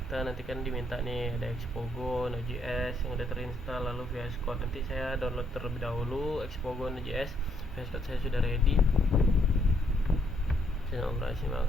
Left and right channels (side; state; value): both; normal; correlation 0.72